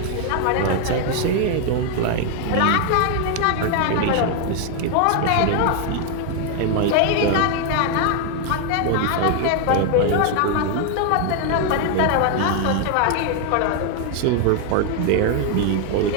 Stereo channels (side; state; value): both; different; correlation 0.01